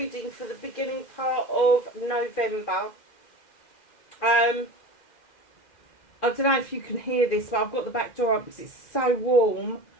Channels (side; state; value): right; late; 2.1 ms